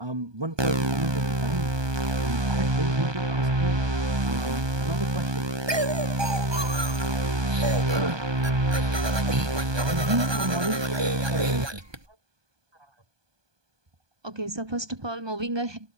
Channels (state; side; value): late; left; 1.2 ms